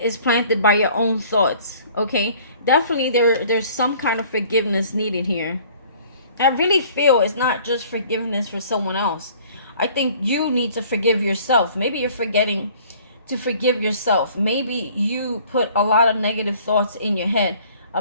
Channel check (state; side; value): inverted; both; correlation -0.53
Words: is planted by your own thoughts. Okay? Definitely there's some kind of forgiveness needed here. I really feel it's not just forgiveness for someone else. I think you need to forgive yourself. Maybe you're forgetting to forgive yourself. Maybe you put a lot of negative thoughts in your head